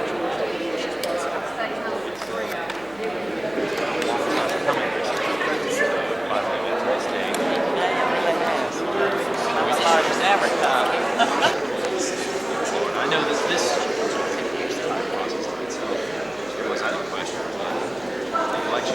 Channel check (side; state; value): right; noise; hum, 27 dB below the sound